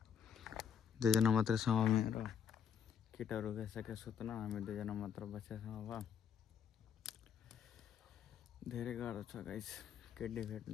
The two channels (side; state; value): right; quieter; 7.8 dB